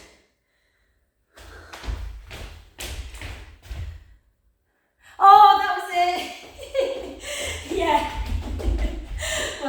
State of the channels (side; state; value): both; identical; correlation 1.00